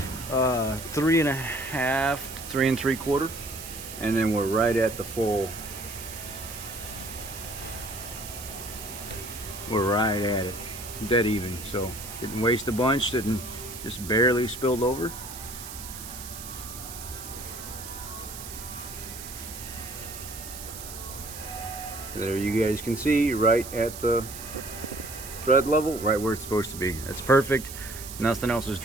3.5 to 3 3/4, and then we're right at the full. We're right at it, dead even. So didn't waste a bunch, didn't, just barely spilled over. There you guys can see, right at the thread level, right where it's supposed to be. That's perfect. Nothing else is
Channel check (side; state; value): right; noise; hiss, 11 dB below the sound